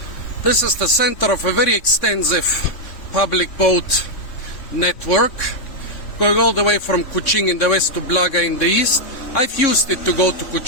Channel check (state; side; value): late; right; 3.6 ms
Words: This is the center of a very extensive public boat network, going all the way from Kuching in the west to Blaga in the east. I've used it to go to